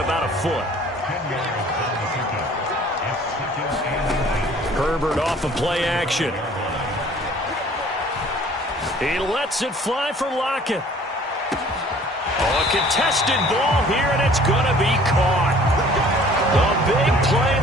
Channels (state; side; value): normal; both; correlation 0.52